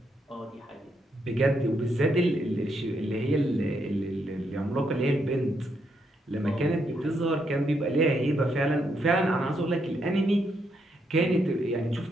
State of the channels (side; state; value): both; normal; correlation 0.77